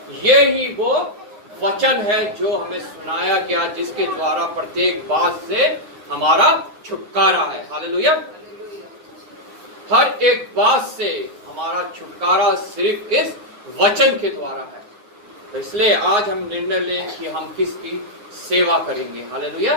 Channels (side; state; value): left; late; 9.6 ms